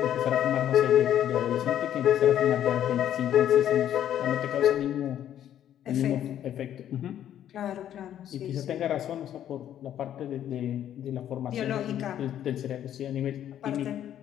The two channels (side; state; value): right; quieter; 10.8 dB